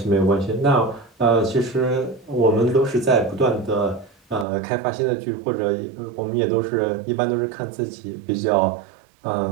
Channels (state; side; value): drops out; left; at 4.5 s